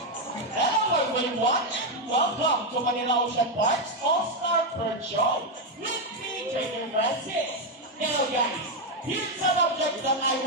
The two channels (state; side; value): normal; both; correlation 0.04